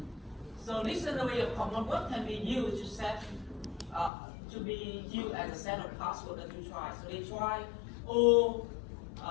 so dictionary of common words can be used to set to be used as a set of password that you try. So they try all.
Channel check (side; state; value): right; drops out; at 4.1 s